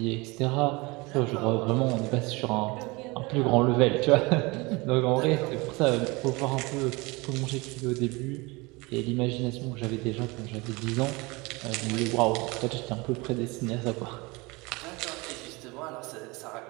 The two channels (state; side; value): quieter; left; 25.0 dB